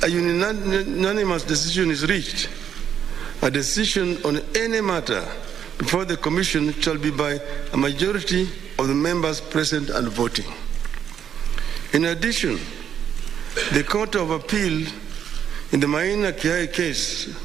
a unanimous decision is reached, a decision on any matter before the Commission shall be by a majority of the members present and voting. In addition, the Court of Appeal in the Maina Kiai case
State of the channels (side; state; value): left; quieter; 8.8 dB